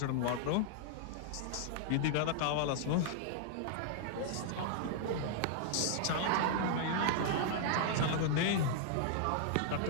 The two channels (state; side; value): different; both; correlation -0.01